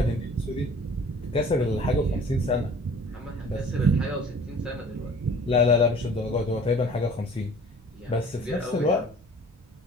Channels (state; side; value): normal; both; correlation 0.49